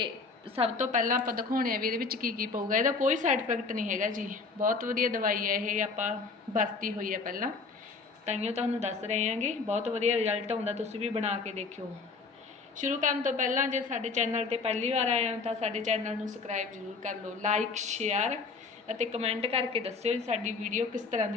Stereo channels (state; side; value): quieter; right; 4.4 dB